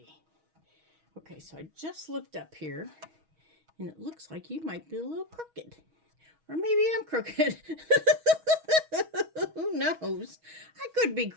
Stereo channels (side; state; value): left; late; 6.3 ms